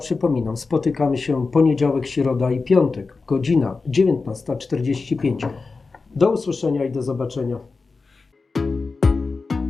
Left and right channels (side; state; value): right; quieter; 4.2 dB